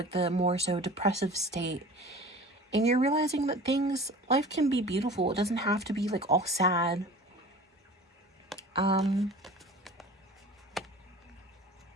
the more so depressive state, and you're realizing that life can be beautiful. It doesn't have to be like all sad. I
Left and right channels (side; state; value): both; normal; correlation 0.40